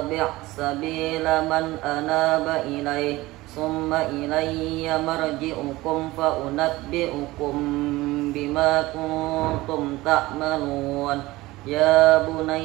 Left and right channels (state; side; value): quieter; left; 19.2 dB